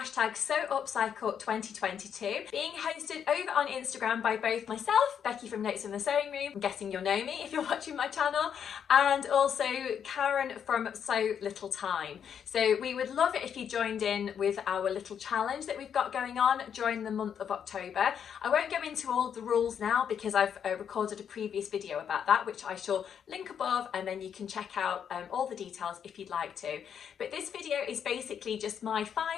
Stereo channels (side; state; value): right; quieter; 8.1 dB